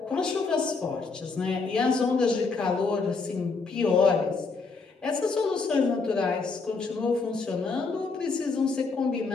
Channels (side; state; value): right; quieter; 4.3 dB